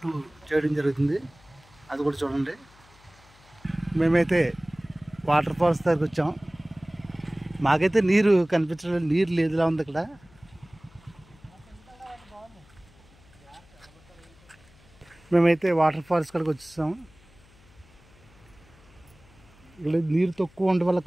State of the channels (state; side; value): noise; left; hum, 27 dB below the sound